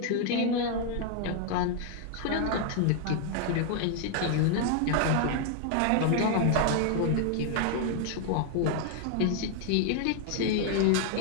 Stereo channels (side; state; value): both; different; correlation 0.00